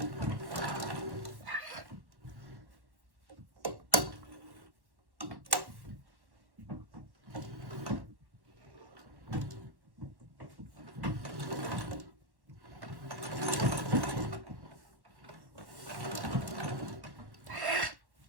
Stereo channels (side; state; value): left; late; 1.1 ms